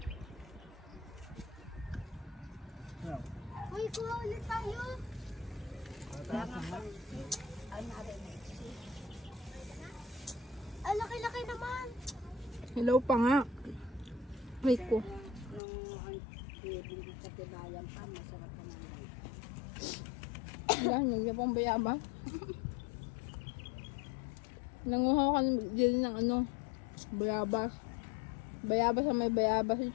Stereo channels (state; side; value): drops out; right; at 15.6 s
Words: Uy, kuha ulit tayo. Ang laki-laki naman. Hello pa nga. Wait ko. Yan, nagyan pang bayabas. Nanguha ka din ng ano, bayabas. Bayabas sa may bayabas.